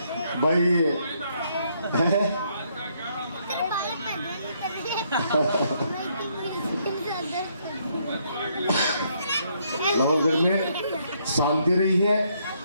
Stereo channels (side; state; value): both; inverted; correlation -0.72